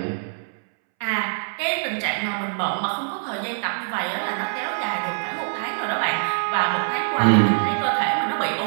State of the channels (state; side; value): silent; left; 63 dB below the other